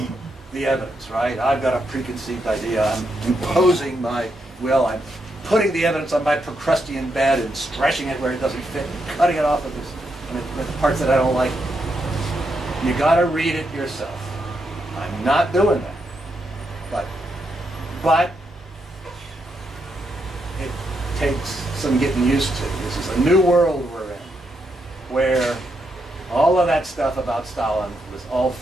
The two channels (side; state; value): both; normal; correlation 0.81